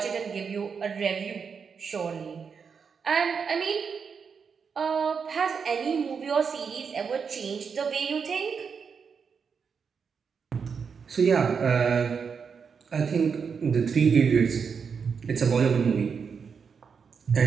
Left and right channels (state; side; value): quieter; left; 6.1 dB